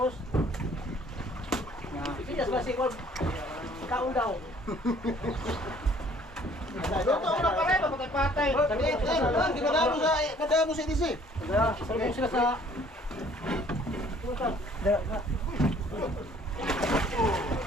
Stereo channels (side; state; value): both; normal; correlation 0.57